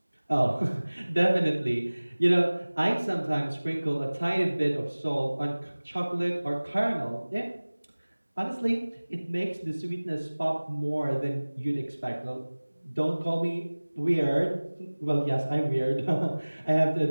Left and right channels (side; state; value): both; inverted; correlation -1.00